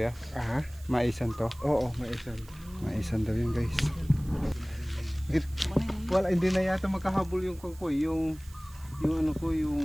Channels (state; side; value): noise; right; hiss, 23 dB below the sound